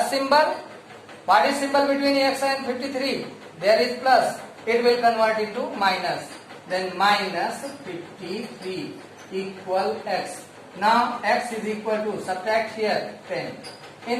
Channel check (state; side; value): identical; both; correlation 1.00